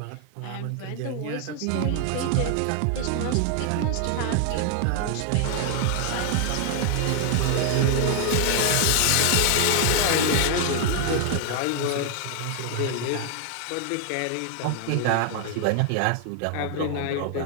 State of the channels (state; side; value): different; both; correlation 0.00